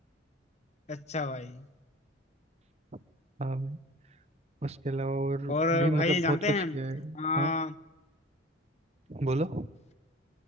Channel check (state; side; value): normal; both; correlation 0.42